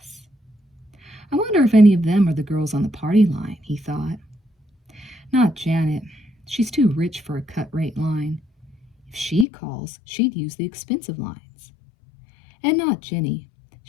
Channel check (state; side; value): drops out; right; at 9.5 s